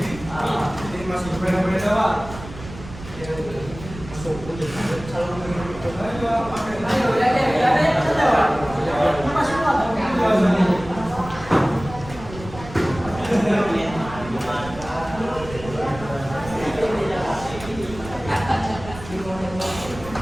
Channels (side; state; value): right; noise; rumble, 14 dB below the sound